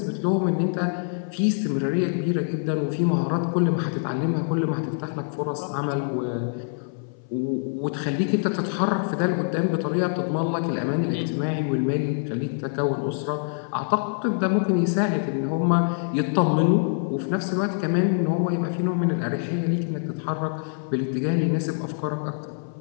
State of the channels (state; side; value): silent; right; 60 dB below the other